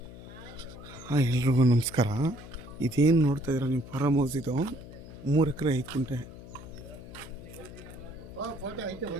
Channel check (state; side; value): noise; left; hum, 15 dB below the sound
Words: ಎಲ್ರಿಗೂ ನಮಸ್ಕಾರ. ಇದೇನು ನೋಡ್ತಾ ಇದ್ದೀರಾ ನೀವು, ಫಾರಮ್ ಹೌಸ್ ಇದು. 3 ಎಕರೆ 5 ಗುಂಟೆ.